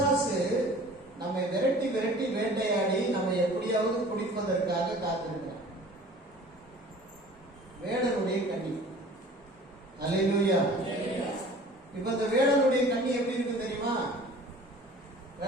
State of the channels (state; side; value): normal; both; correlation 0.46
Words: நம்மை விரட்டி விரட்டி வேட்டையாடி நம்ம எப்படியாவது குடிப்பதற்காக காத்திருக்கிறான். வேடனுடைய கண்ணி. அல்லேலூயா. இப்ப இந்த வேடனுடைய கண்ணி எப்படி இருக்கு தெரியுமா?